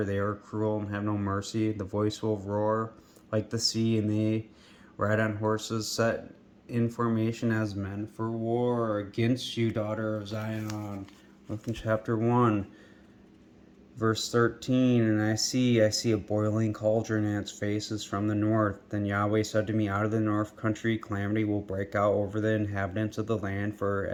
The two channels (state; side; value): identical; both; correlation 1.00